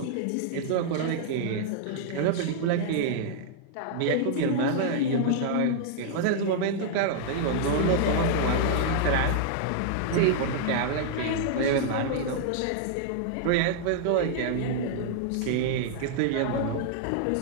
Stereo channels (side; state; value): both; different; correlation -0.01